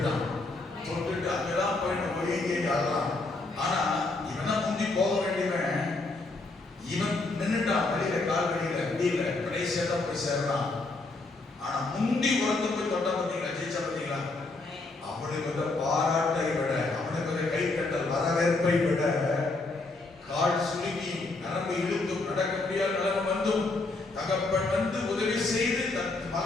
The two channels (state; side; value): quieter; right; 3.3 dB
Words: தொட்டுட்டு அங்கதான் போய் ஒழுங்கி ஆடுறான். ஆனா இவனா முந்தி போக வேண்டியவன், இவன் நின்னுட்டான் வெளியில, கால் வெளியில முடியல, கடைசியா தான் போய் சேர்றான். ஆனா முந்தி ஒருத்தர் போய் தொட்டா பார்த்தீங்களா, ஜெயிச்சா பார்த்தீங்களா, அவனுக்கு வந்து பாராட்டை விட, அவனுக்கு வந்து கை கட்டல் வரவேற்பை விட, கால் சுருங்கி நரம்பு இழுத்தும் நடக்க முடியாத நிலைமை வந்தும் தகப்பன் வந்து உதவி செய்து தன்